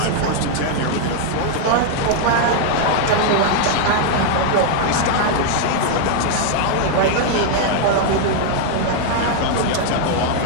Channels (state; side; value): different; both; correlation 0.00